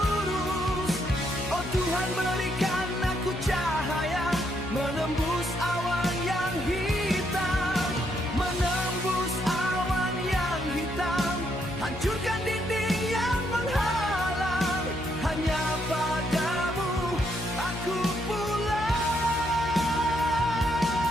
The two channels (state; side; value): noise; left; hum, 10 dB below the sound